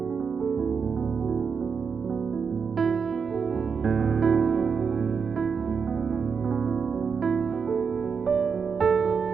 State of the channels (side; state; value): left; quieter; 5.9 dB